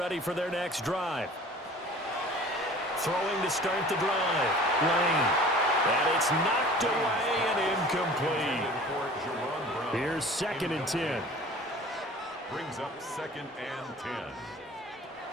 for their next drive. Throwing to start the drive. Lane. And it's knocked away and incomplete. Here's 2nd and 10. Brings up 2nd and 10.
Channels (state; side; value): normal; both; correlation 0.45